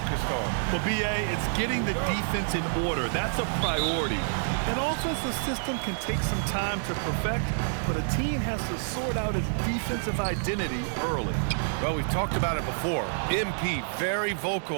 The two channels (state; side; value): silent; left; digital silence